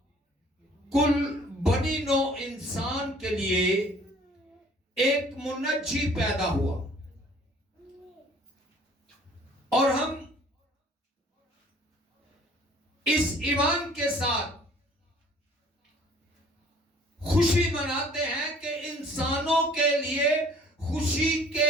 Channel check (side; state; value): both; normal; correlation 0.54